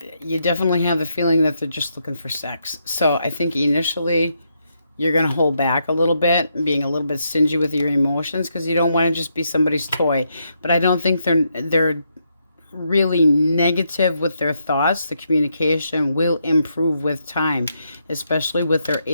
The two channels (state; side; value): inverted; both; correlation -0.79